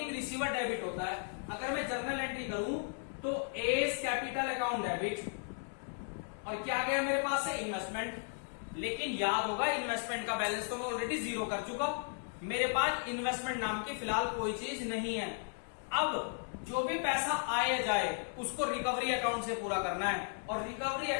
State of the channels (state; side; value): silent; right; 54 dB below the other